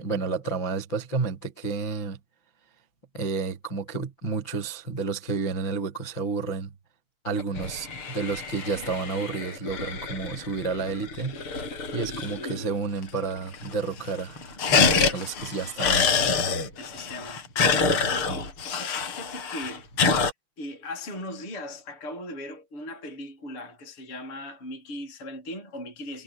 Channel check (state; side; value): late; right; 6.6 ms